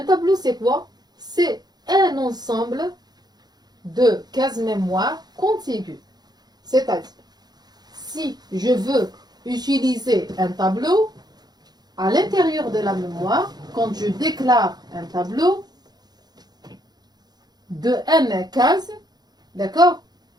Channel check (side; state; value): left; late; 0.20 ms